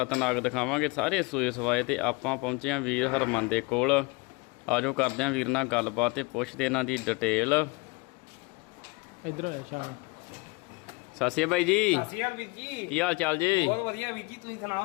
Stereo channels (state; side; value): quieter; right; 27.1 dB